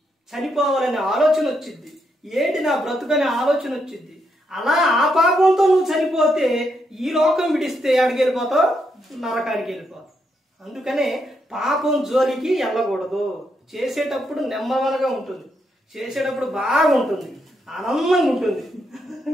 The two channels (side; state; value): both; normal; correlation 0.79